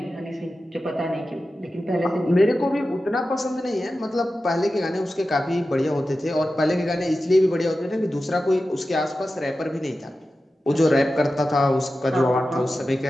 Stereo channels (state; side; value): normal; both; correlation 0.93